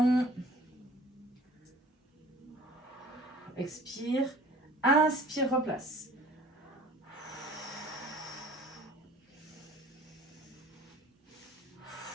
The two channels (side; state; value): both; normal; correlation 0.50